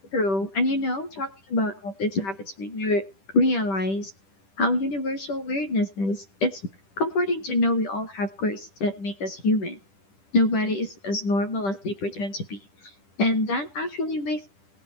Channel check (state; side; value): late; right; 10 ms